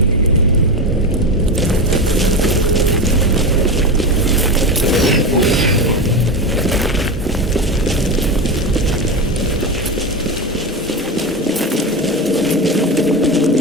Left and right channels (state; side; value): normal; both; correlation 0.19